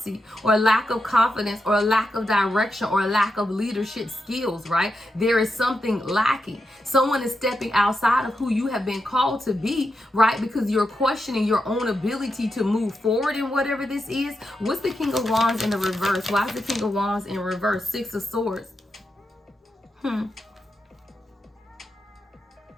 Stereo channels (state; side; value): normal; both; correlation 0.87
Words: or lack of confidence, or a lack of direction, or a lack of leadership skills, right? There is something lacking. Someone is stepping outside of who you have been called to be, right? Because you're questioning your own ability to move forward in whatever this is. What's the King of Wands in the reverse? Why is the King of Wands in reverse? Six of Swords.